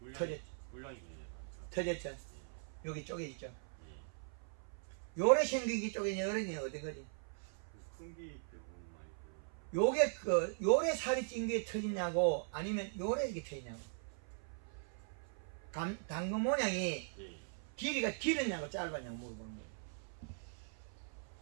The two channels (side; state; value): left; silent; 51 dB below the other